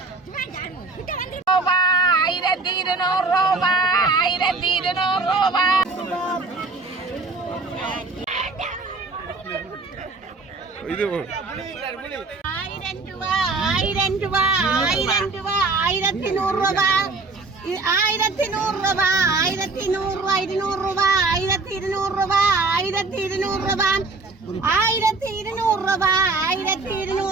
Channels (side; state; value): left; quieter; 3.7 dB